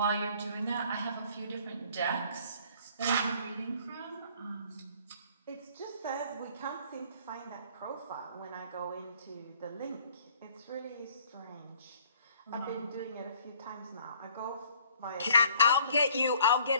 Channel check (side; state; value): both; inverted; correlation -0.57